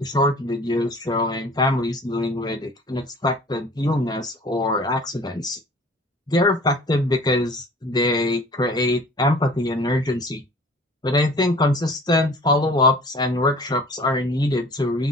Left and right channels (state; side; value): normal; both; correlation 0.47